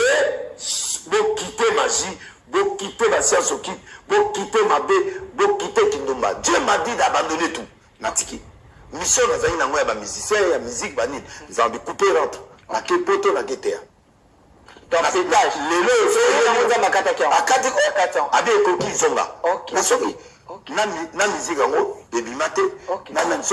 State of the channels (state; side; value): identical; both; correlation 1.00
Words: vous quittez magie, vous quittez la science occulte, vous quittez ma bé, vous quittez Kindumba. Dieu m'a dit d'abandonner tout. Natiki. Mission na zaina ngoya ba musicien ya musique banine. Ils ont découpé rentre. Na ke poto na ketea. Donc pétage. Lelo c'est un makata qui akati abi ekoki zonga. Na soki na musique yango ebimate na